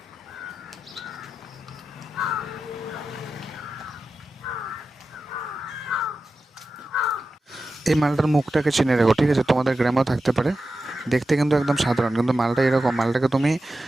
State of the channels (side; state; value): both; normal; correlation 0.92